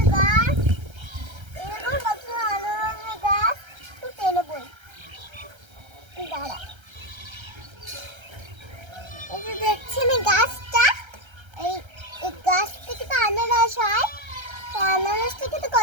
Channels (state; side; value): late; left; 1.3 ms